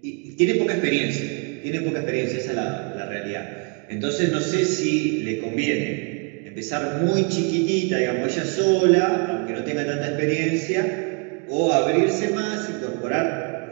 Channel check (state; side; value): quieter; left; 35.9 dB